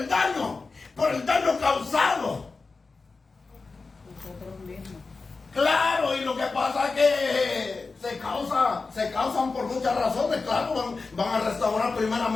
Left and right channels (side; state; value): right; quieter; 4.1 dB